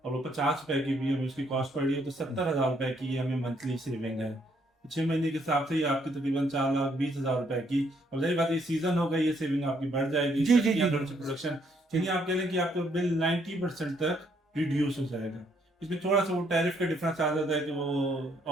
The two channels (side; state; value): both; normal; correlation 0.70